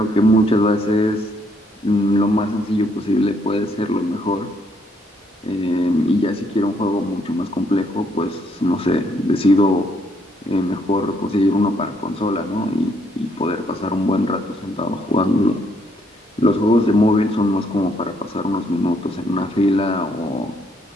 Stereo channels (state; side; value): normal; both; correlation 0.71